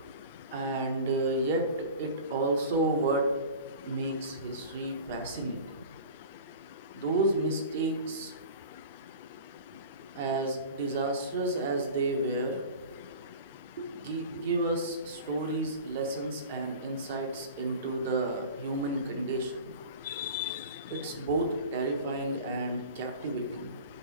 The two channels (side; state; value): both; inverted; correlation -0.37